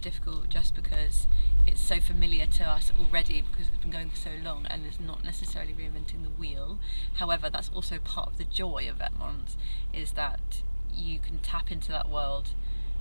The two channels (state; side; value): inverted; both; correlation -1.00